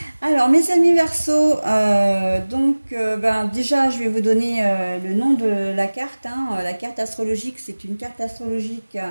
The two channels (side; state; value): both; inverted; correlation -1.00